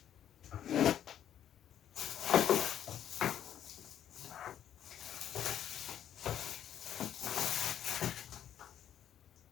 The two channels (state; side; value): quieter; right; 10.3 dB